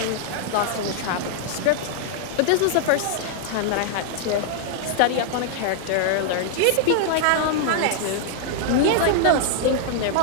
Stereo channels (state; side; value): different; both; correlation -0.01